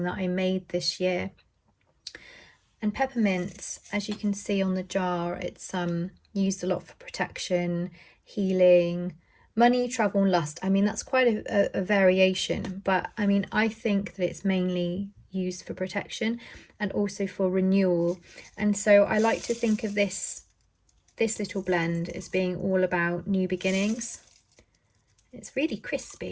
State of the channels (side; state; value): both; identical; correlation 1.00